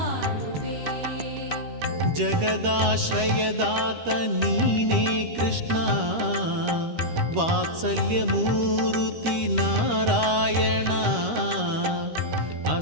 ಜಗದಾಶ್ರಯದಾತ ನೀನೇ ಕೃಷ್ಣ, ವಾತ್ಸಲ್ಯ ಮೂರುತಿ ನಾರಾಯಣ,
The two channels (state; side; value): late; left; 13 ms